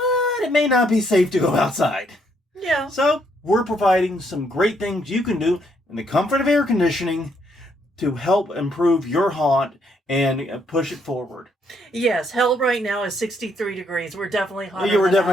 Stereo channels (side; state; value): both; normal; correlation 0.72